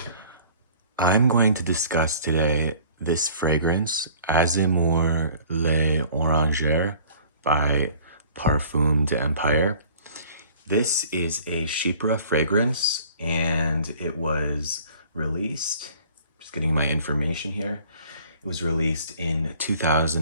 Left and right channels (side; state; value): both; inverted; correlation -0.50